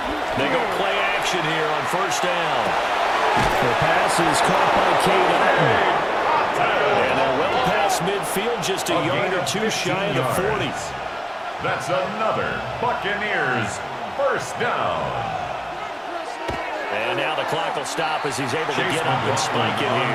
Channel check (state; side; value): identical; both; correlation 1.00